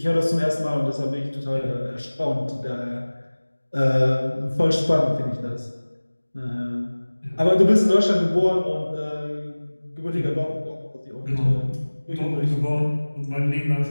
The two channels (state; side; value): inverted; both; correlation -1.00